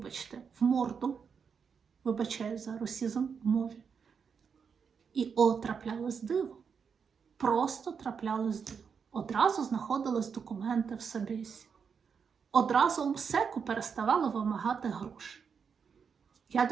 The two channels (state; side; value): quieter; left; 6.3 dB